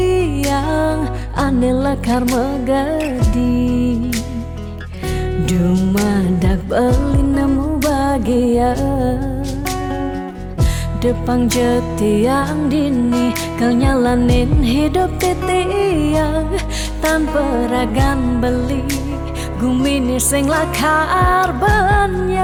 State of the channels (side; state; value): both; identical; correlation 1.00